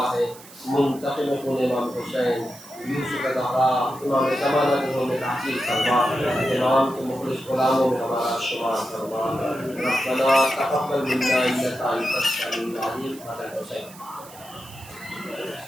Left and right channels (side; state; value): right; noise; hiss, 19 dB below the sound